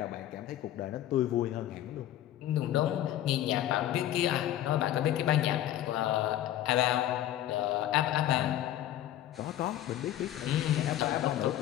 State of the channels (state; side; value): quieter; right; 12.7 dB